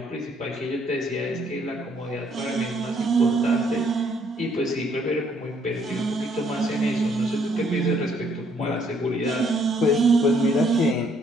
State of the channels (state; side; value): normal; both; correlation 0.67